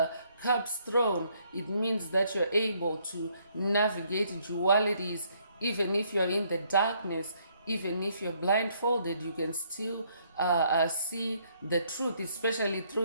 Cups throne, it means that you're able to navigate dualities. Even if you're in the darkness, even if you're blindfolded, you can still see the truth, especially through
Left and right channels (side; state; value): both; inverted; correlation -0.68